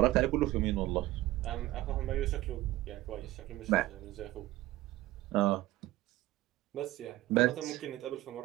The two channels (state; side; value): quieter; left; 16.8 dB